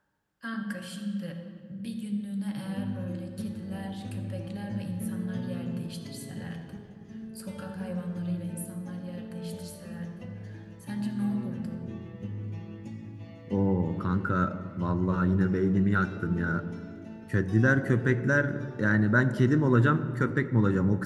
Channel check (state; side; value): identical; both; correlation 1.00